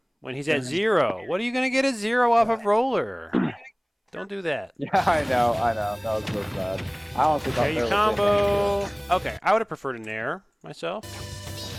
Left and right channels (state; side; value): identical; both; correlation 1.00